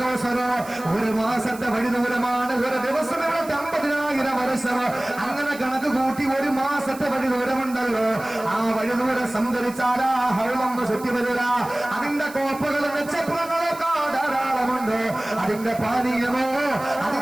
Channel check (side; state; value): right; noise; hiss, 18 dB below the sound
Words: കൗസർ 1 മാസത്തെ വഴിദൂരമാണ്. ഒരു ദിവസം ഇവിടെ 50,000 വർഷം. അങ്ങനെ കണക്ക് കൂട്ടി 1 മാസത്തെ വഴിദൂരമുണ്ടല്ലോ. ആ വഴിദൂരം സഞ്ചരിച്ചാൽ ആ ഹൗലൊന്ന് ചുറ്റി വരിക. അതിന്റെ കോപ്പകളും നക്ഷത്രങ്ങളൊക്കെ ധാരാളമുണ്ട്. അതിന്റെ പാനീയമോ